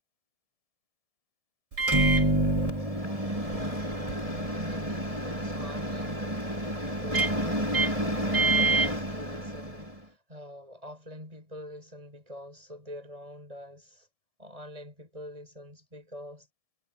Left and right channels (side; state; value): left; late; 1.7 ms